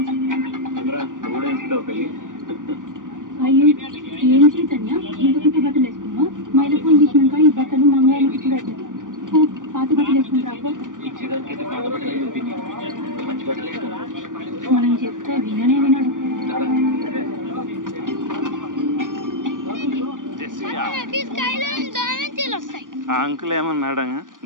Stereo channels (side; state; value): left; late; 0.88 ms